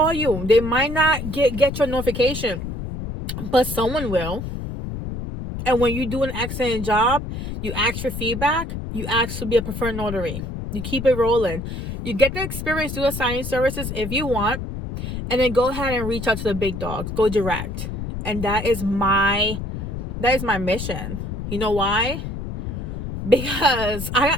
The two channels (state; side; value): noise; left; rumble, 6 dB below the sound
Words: you. They might not get your notification, but someone will. And when you do an excellent job, you ask for feedback, you ask to be a preferred notary. You keep it rolling. You get the experience through the signing services if you want, and then go ahead and reach out to the big dogs. Go direct. And that is my mission. You know why? Because